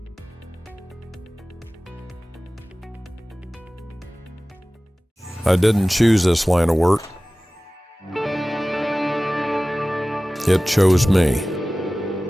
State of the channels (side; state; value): both; normal; correlation 0.97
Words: I didn't choose this line of work. It chose me.